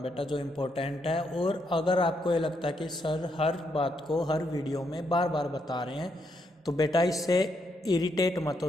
बेटा, जो इम्पोर्टेंट है। और अगर आपको ये लगता है कि सर हर बात को हर वीडियो में बार बार बता रहे हैं, तो बेटा इससे इरिटेट मत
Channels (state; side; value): normal; both; correlation 0.77